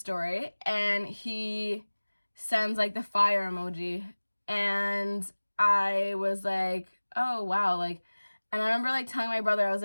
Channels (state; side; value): inverted; both; correlation -1.00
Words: and he sends like the fire emoji, and I was like, oh wow, like, and I remember like telling my brother, I was